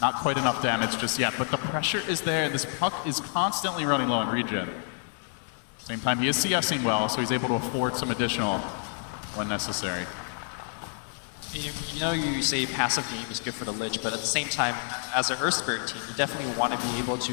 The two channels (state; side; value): silent; right; digital silence